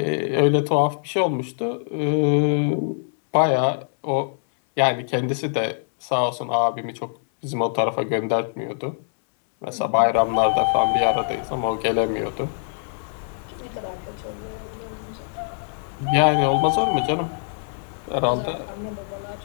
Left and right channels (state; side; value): silent; right; 63 dB below the other